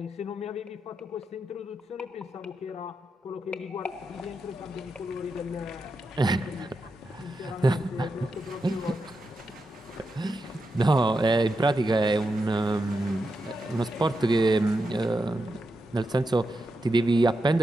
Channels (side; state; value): both; normal; correlation 0.87